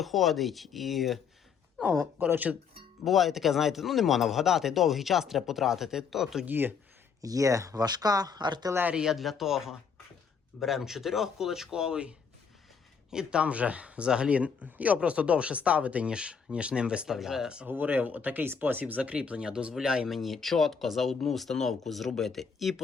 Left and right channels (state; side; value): quieter; right; 6.2 dB